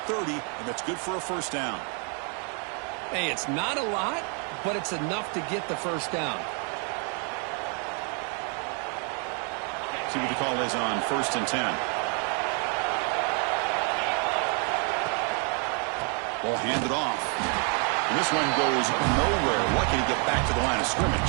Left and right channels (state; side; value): quieter; left; 39.0 dB